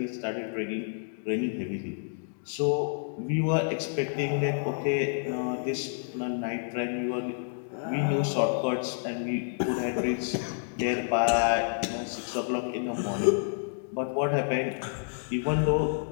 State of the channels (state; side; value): silent; right; digital silence